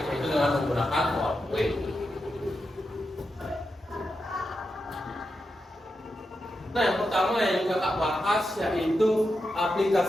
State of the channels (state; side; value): normal; both; correlation 0.87